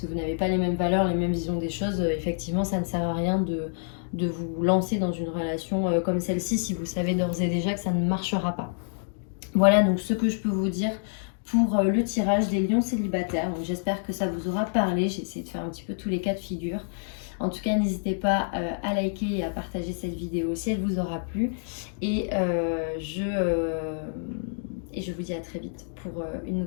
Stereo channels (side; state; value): right; silent; digital silence